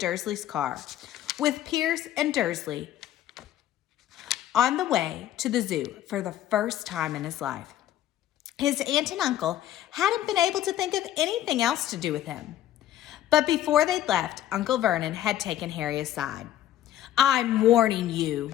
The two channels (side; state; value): right; quieter; 12.3 dB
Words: car with Piers and Dursley on the way to the zoo for the first time in his life. His aunt and uncle hadn't been able to think of anything else to do with him. But before they'd left, Uncle Vernon had taken Harry aside. "I'm warning you,"